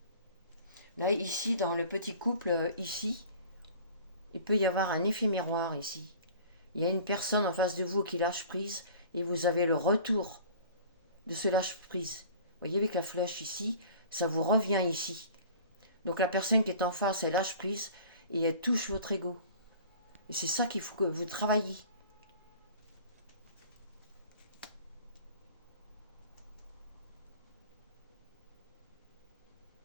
Là, ici, dans le petit couple, ici, il peut y avoir un effet miroir ici. Il y a une personne en face de vous qui lâche prise et vous avez le retour de ce lâche prise. Vous voyez avec la flèche ici, ça vous revient ici. Donc la personne qui est en face, elle lâche prise et elle touche votre ego. Et c'est ça qu'il faut que vous travailliez.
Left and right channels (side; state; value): both; inverted; correlation -0.45